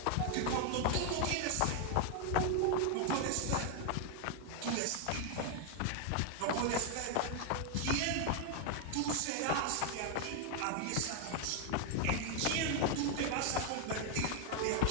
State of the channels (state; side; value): different; both; correlation 0.00